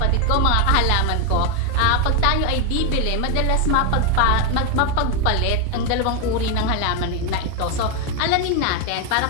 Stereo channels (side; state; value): both; different; correlation 0.02